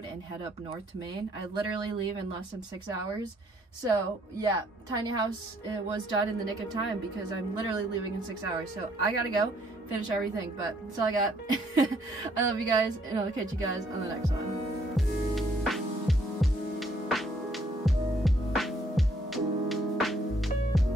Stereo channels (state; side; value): normal; both; correlation 0.66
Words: and head up north to Maine. I literally leave in less than 6 hours. So yeah, tiny house was done in the nick of time because I'm literally leaving in 6 hours. So I gotta go finish everything, but that's all I got. I love you guys, and I'll catch you guys on the next one.